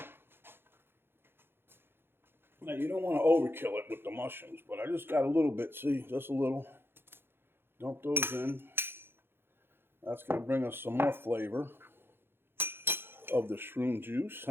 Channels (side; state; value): left; late; 0.11 ms